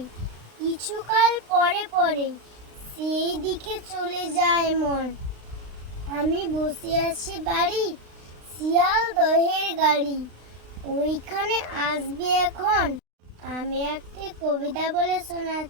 কিছুকাল পরে পরে সেই দিকে চলে যায় মন। আমি বসে আছি বাড়ি, শিয়ালদহের গাড়ি ওইখানে আসবে এখন। আমি একটি কবিতা বলে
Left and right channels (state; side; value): late; left; 36 ms